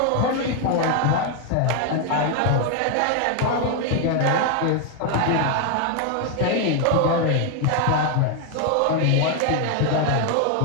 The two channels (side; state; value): both; different; correlation 0.00